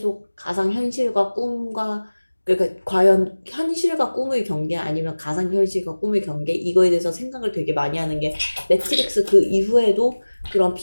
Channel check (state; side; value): inverted; both; correlation -1.00